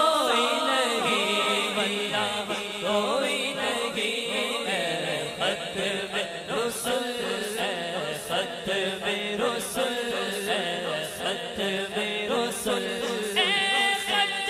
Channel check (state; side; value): identical; both; correlation 1.00